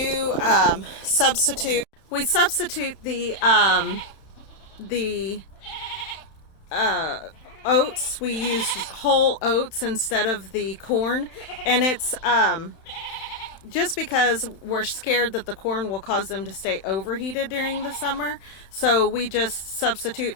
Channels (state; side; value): late; right; 31 ms